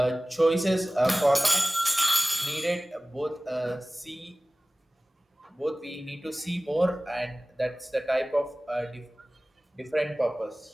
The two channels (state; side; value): normal; both; correlation 0.98